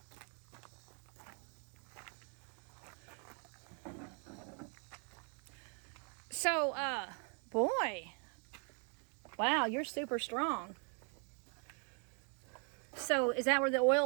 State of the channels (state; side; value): quieter; left; 39.8 dB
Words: So, boy, wow, you're super strong. So, is that where the